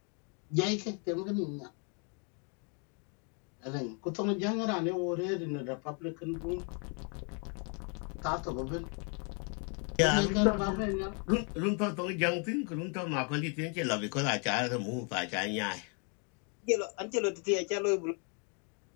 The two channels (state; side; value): quieter; right; 37.9 dB